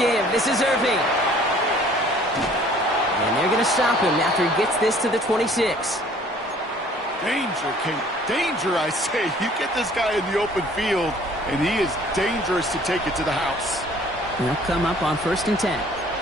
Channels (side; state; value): both; normal; correlation 0.55